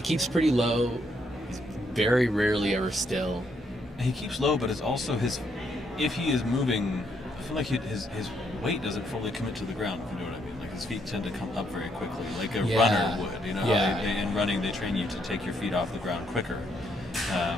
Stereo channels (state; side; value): normal; both; correlation 0.74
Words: pretty low. He's very rarely ever still. He keeps low, but it's also if he is moving, I feel like his weight doesn't fully commit to the ground, if you know what I mean. Like his feet tend to come up very quickly, like a runner would. You know, Yeah. in running they train you to take your feet off the ground quicker.